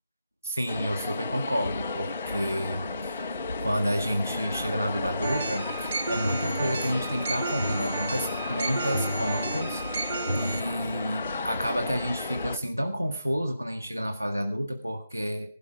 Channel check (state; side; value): inverted; both; correlation -0.84